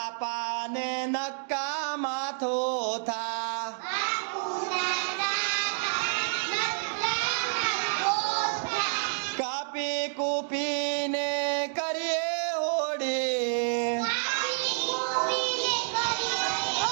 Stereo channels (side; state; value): left; silent; 59 dB below the other